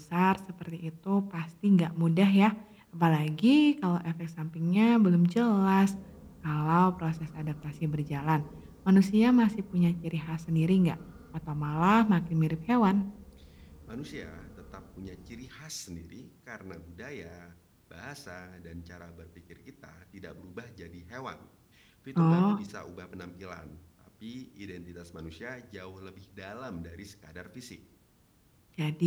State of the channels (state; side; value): identical; both; correlation 1.00